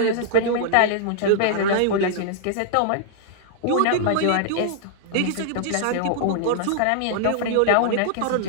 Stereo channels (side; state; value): both; different; correlation -0.01